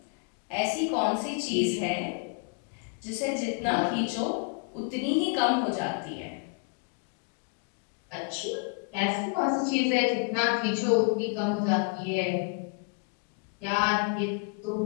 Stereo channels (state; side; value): quieter; right; 36.2 dB